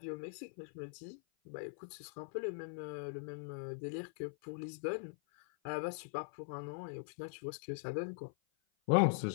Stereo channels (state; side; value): silent; right; 50 dB below the other